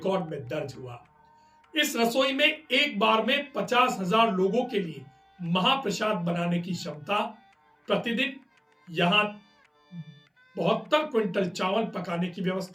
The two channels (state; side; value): identical; both; correlation 1.00